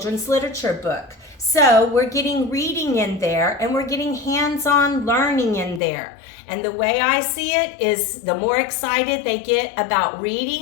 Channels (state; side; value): drops out; right; at 5.8 s